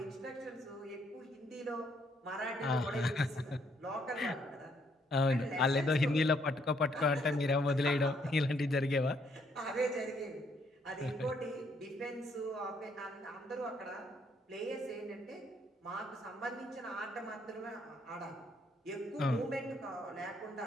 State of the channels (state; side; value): normal; both; correlation 0.70